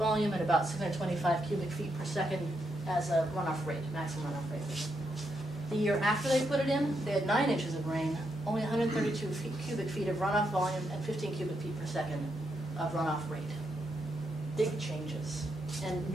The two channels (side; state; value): both; normal; correlation 0.81